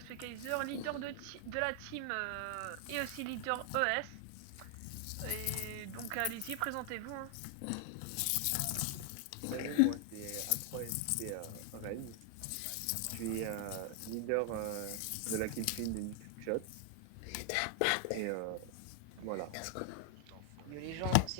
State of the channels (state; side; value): different; both; correlation 0.00